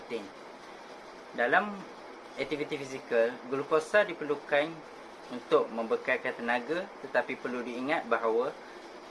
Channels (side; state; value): both; identical; correlation 1.00